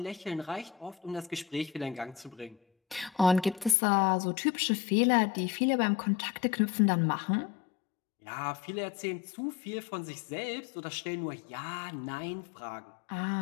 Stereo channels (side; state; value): right; drops out; at 3.8 s